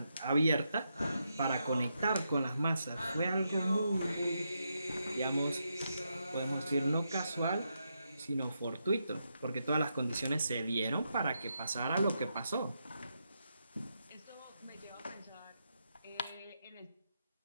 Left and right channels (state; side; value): inverted; both; correlation -0.83